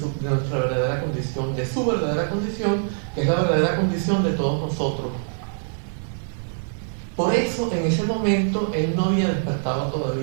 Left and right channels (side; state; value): left; silent; 63 dB below the other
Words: nuestra verdadera condición, de su verdadera condición, que es la verdadera condición de todos nosotros. Por eso, en ese momento, él no había despertado